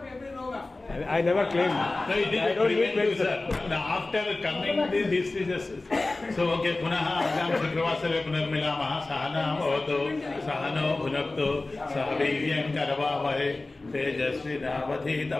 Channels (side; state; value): right; quieter; 3.1 dB